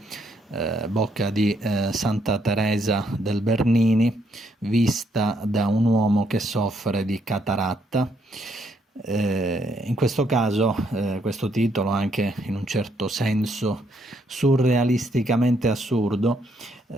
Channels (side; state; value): both; normal; correlation 0.73